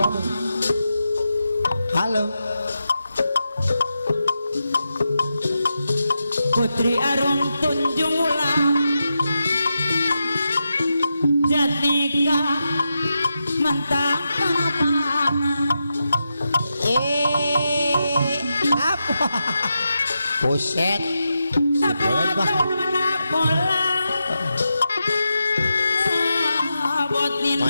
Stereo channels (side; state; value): both; inverted; correlation -0.88